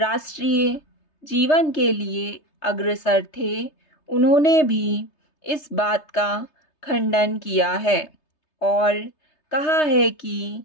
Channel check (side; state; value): right; late; 3.3 ms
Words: जीवन के लिए अग्रसर थे, उन्होंने भी इस बात का खंडन किया है और कहा है कि